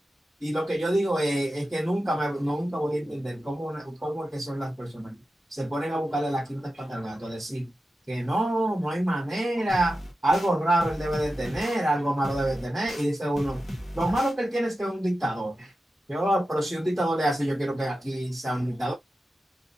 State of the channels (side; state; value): both; normal; correlation 0.92